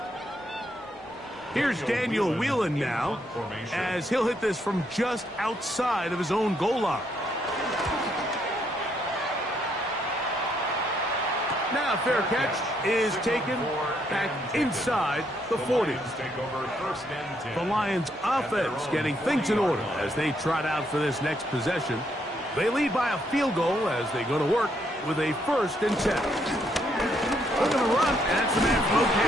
Here's Daniel Whelan now, as he'll hit this from just outside of his own goal line. Now fair catch is taken back inside the 40. The Lions offense getting things in order as they trot out for this next possession. They lead by a field goal as they go to work with a 1st and 10. Looking to run, and that's the man from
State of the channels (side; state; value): both; normal; correlation 0.74